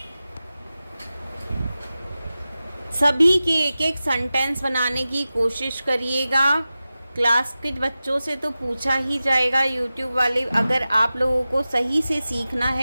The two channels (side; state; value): both; inverted; correlation -0.95